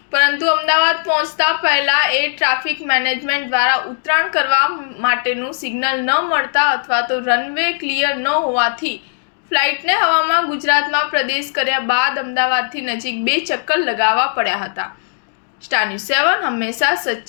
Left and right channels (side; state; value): right; silent; digital silence